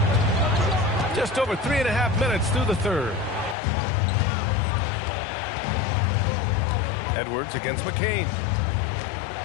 Just over 3.5 minutes through the third. Edwards against McCain.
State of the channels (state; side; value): drops out; right; at 3.6 s